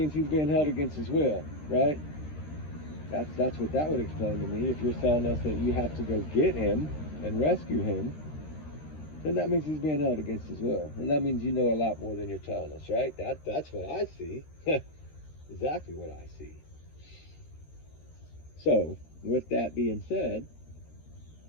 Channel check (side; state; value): right; late; 13 ms